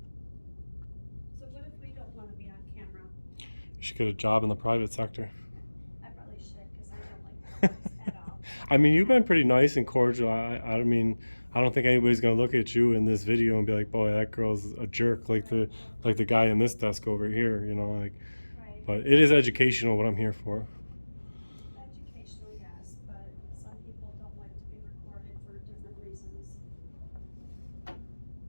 So what if we don't want to be on camera? You should get a job in the private sector. I probably should because I don't like this at all. I mean, you've been pretty nice and cordial. I mean, I don't think anybody's gonna look at you in this video and be like, "Boy, that girl's a jerk," like the guy in this desk over here, like. Right. But it is educational. What I'm here for. Educational, yes, but some people don't like to be recorded for different reasons.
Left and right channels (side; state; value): both; inverted; correlation -1.00